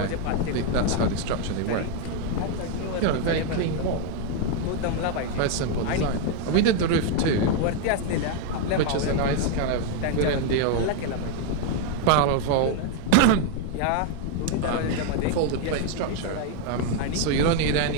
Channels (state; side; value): different; both; correlation 0.01